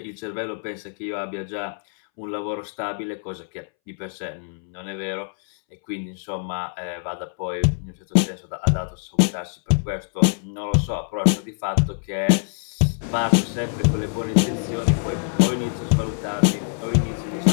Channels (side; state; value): right; silent; 63 dB below the other